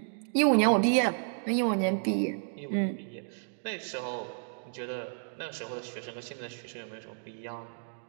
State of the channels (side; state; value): left; silent; 57 dB below the other